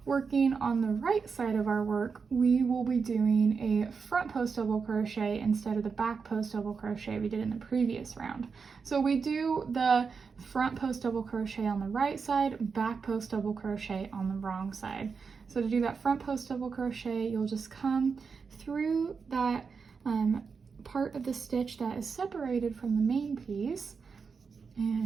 working on the right side of our work, we will be doing a front post double crochet instead of the back post double crochet we did in the previous round. So we do the front post double crochet on the right side, back post double crochet on the wrong side. So to do that front post double crochet, you'll just come through that part of the stitch that is separated from the main piece,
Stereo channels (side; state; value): left; quieter; 5.4 dB